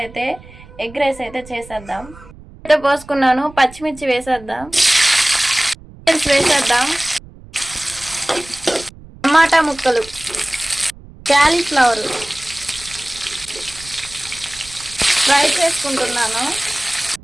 ఎగ్ రైస్ అయితే చేసేద్దాం. అయితే పోసుకున్నాను, పచ్చిమిర్చి వేసేద్దాం, వేసేద్దాం, టమాటా ముక్కలు, క్యాలీఫ్లవర్ ఫ్రై చేసుకుంటున్నాను.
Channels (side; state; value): right; noise; rumble, 20 dB below the sound